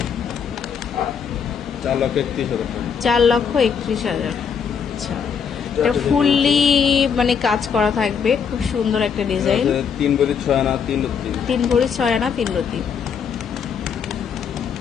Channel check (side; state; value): right; quieter; 6.8 dB